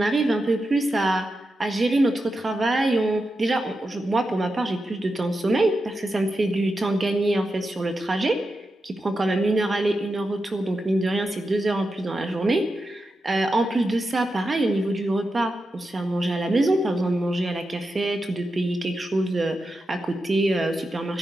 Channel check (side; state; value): both; normal; correlation 0.89